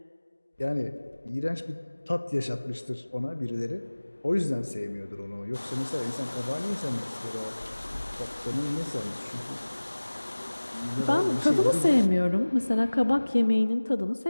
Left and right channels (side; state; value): both; inverted; correlation -1.00